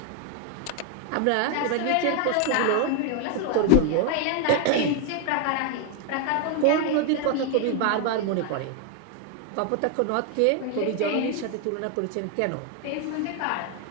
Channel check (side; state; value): both; different; correlation 0.01